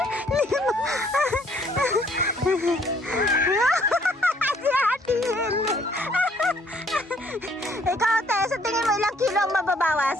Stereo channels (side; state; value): both; normal; correlation 0.63